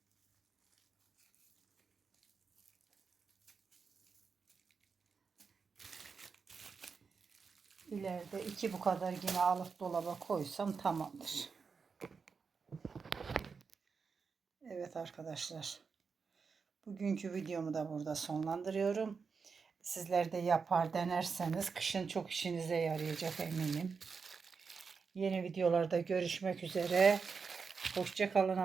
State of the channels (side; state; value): left; quieter; 5.3 dB